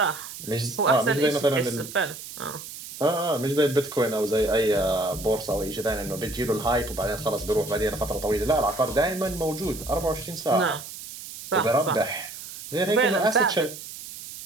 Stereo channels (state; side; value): noise; right; hiss, 12 dB below the sound